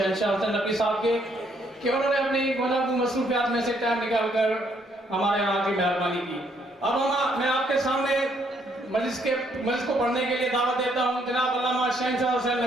حسن نقوی صاحب کے کہ انہوں نے اپنی گوناگو مصروفیات میں سے ٹائم نکال کر ہمارے یہاں کی مہربانی کی. اب میں آپ کے سامنے مجلس کو پڑھنے کے لیے دعوت دیتا ہوں جناب علامہ شہنشاہ حسین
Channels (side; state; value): both; normal; correlation 0.70